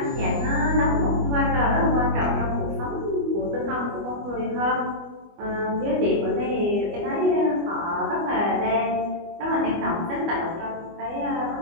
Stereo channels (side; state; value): left; late; 25 ms